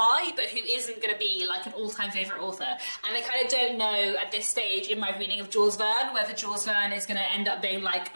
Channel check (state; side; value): inverted; both; correlation -1.00